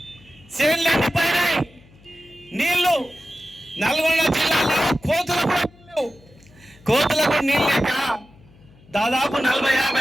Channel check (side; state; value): left; noise; hum, 26 dB below the sound